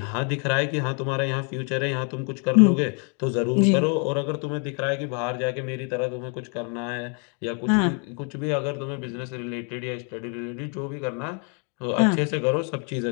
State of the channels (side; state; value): right; quieter; 38.7 dB